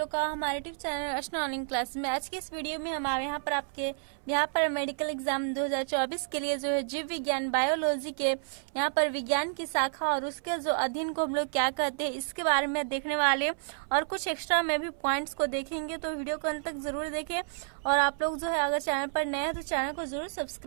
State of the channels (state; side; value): silent; left; 58 dB below the other